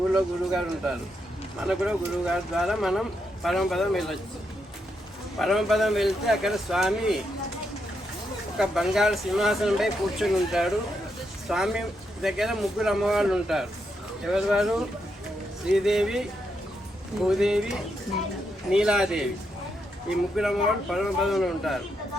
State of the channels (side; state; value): both; normal; correlation 0.81